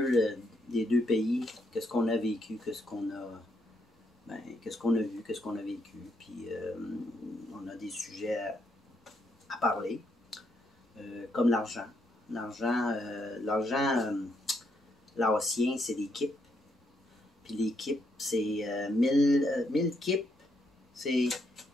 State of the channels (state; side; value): normal; both; correlation 0.76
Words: des deux pays, qu'est-ce qu'on a vécu, qu'est-ce qu'on a vu, qu'est-ce qu'on a vécu. Puis on a des sujets à parler, comme l'argent. L'argent laotien, c'est des kips. Puis les kips, c'est 1000 kips, c'est...